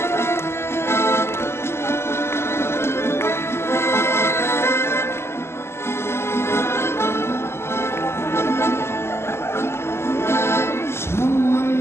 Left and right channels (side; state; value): right; late; 0.12 ms